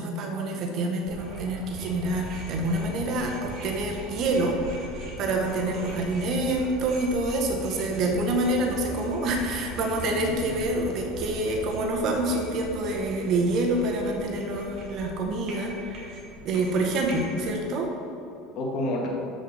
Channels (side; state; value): both; normal; correlation 0.34